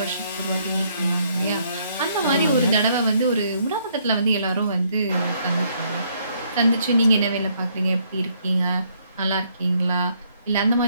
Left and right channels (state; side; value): inverted; both; correlation -0.69